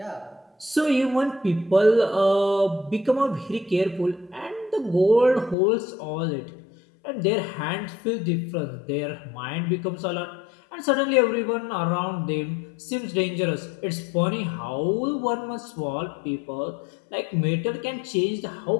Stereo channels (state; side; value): drops out; right; at 5.6 s